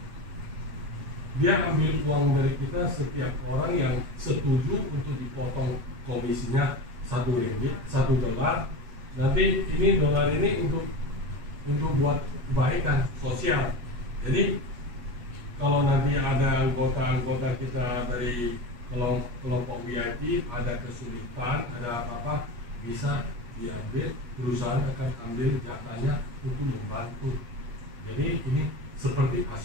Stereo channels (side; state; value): left; late; 8.3 ms